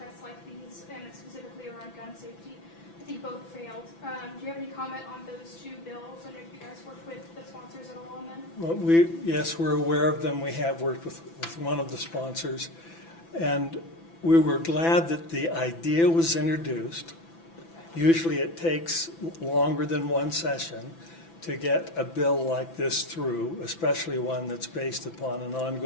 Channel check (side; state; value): right; late; 6.0 ms